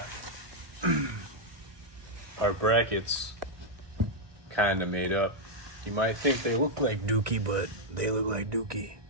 our brackets kind of made up. You might think they look like Dookie, but they look like Dookie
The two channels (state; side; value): late; left; 1.2 ms